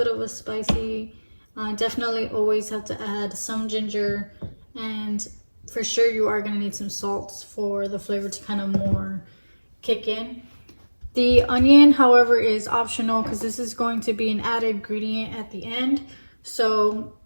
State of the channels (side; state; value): both; inverted; correlation -1.00